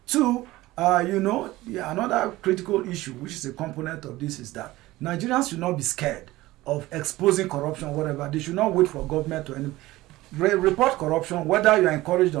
Two, another critical issue, which is a component of this, is that Nigerians should not be scared of exposing corruption, whatever. They should not wait for government to report corruption, whether you are encouraged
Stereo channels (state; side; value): quieter; left; 18.0 dB